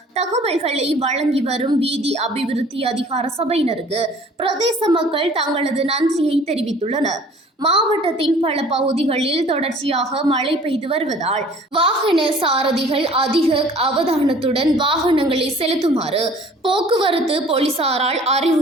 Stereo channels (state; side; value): normal; both; correlation 0.51